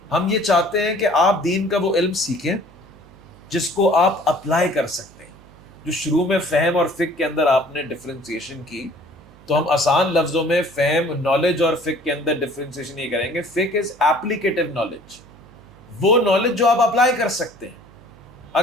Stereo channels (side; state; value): right; noise; hum, 24 dB below the sound